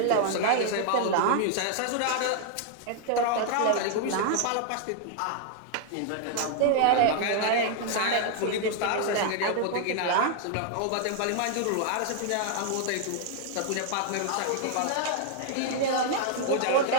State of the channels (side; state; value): both; different; correlation 0.00